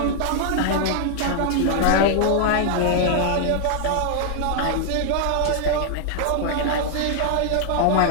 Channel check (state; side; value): different; both; correlation 0.00